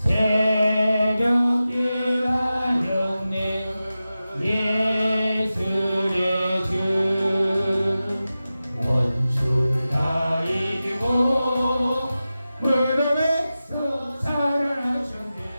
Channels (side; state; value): both; inverted; correlation -0.94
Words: 하였네 예수의 주 원수를 다 이기고 무덤에서 살아나셨네